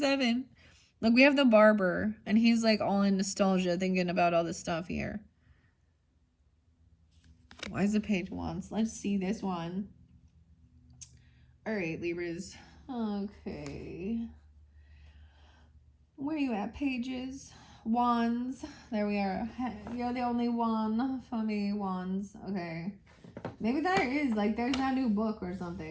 Look, we have the barber, and he's like all in nostalgia, thinking about all this stuff here. Why is the Page of Wands? Let's see this one. All right, Libras. Okay. Where are you at, Pages? Wands. There we are. You're the only one for me, Wands. Okay. Maybe there is, like, there's that new book or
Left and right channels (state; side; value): identical; both; correlation 1.00